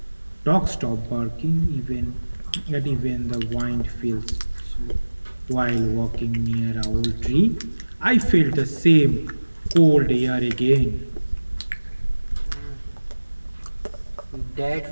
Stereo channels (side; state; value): both; inverted; correlation -1.00